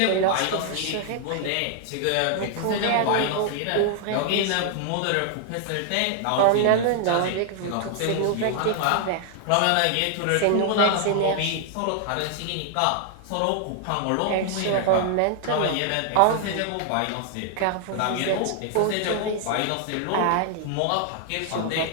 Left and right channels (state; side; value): different; both; correlation 0.00